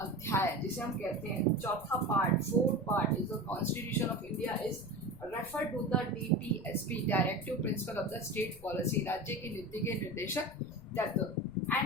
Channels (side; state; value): left; noise; rumble, 19 dB below the sound